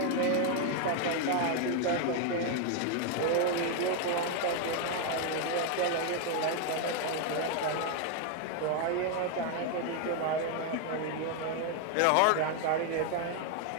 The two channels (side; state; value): both; different; correlation 0.01